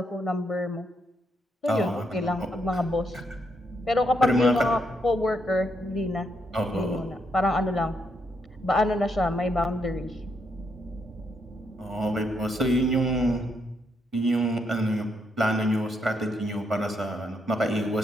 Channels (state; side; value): normal; both; correlation 0.78